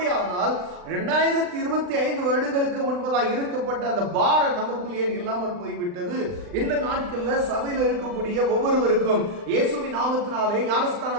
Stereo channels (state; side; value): late; left; 39 ms